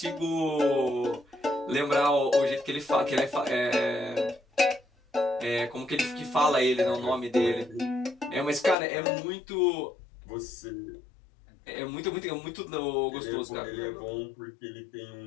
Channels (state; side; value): drops out; right; at 8.8 s